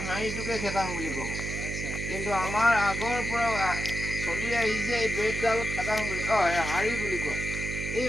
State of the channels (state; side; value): noise; right; hum, 5 dB below the sound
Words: হাড়িটোকে খেতাং বুলি ক'ব। কিন্তু আমাৰ আগৰ পৰা চলি আহিছে এই বেতডাল খেতাং বুলি হাড়ি বুলি কয়। এই